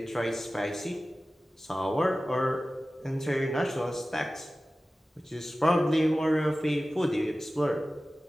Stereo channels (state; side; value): normal; both; correlation 0.96